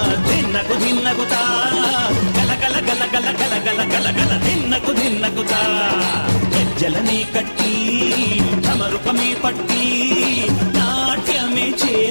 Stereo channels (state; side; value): inverted; both; correlation -1.00